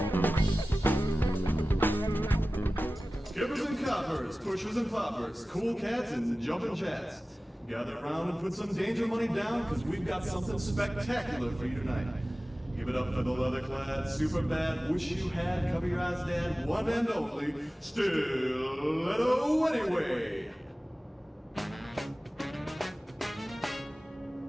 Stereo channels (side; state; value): both; normal; correlation 0.97